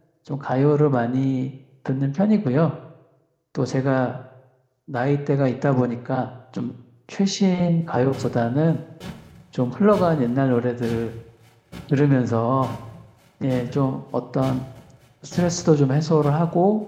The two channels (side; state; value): both; identical; correlation 1.00